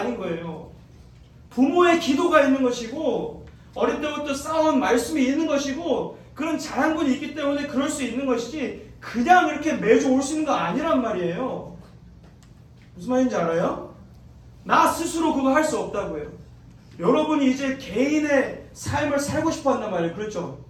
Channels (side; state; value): both; identical; correlation 1.00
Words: 거예요. 부모의 기도가 있는 것이고 어릴 때부터 쌓아온 말씀이 있는 것이고 그런 자양분이 있기 때문에 그럴 수 있는 것이지 그냥 이렇게 매주 올 수 있는 거 아니란 말이에요. 무슨 말인지 알아요? 나 스스로 그거 할 수 없다고요. 여러분이 이제 개인의 삶을 살고 싶어 한단 말이에요. 그렇죠?